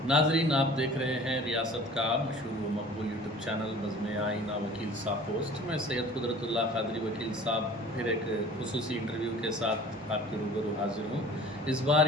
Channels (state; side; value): normal; both; correlation 0.46